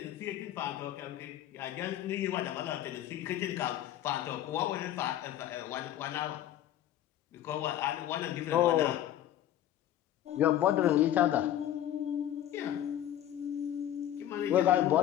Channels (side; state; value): right; quieter; 12.0 dB